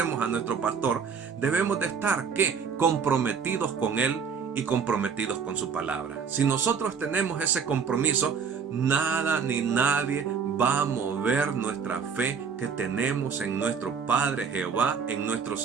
a nuestro pastor, debemos de estar, ¿qué? Comprometidos con Él y comprometidos con su palabra. Si nosotros tenemos ese compromiso, nada ni nadie va a mover nuestra fe que tenemos en nuestro Padre Jehová, en nuestro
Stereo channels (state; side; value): quieter; left; 6.2 dB